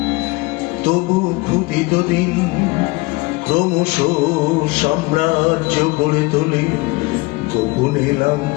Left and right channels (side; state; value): right; quieter; 23.9 dB